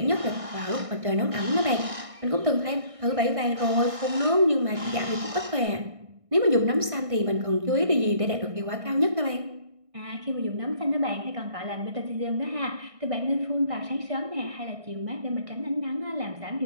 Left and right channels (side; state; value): left; late; 1.6 ms